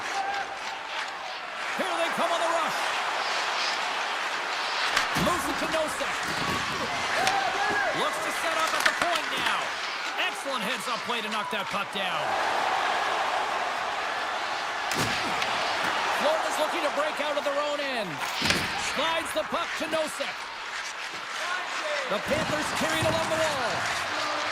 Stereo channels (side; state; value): both; identical; correlation 1.00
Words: Here they come on the rush. Moves it to Nosek. Looks to set up at the point now. Excellent heads-up play to knock that puck down. Florida's looking to break out of their own end. Slides the puck to Nosek. The Panthers carried along the wall.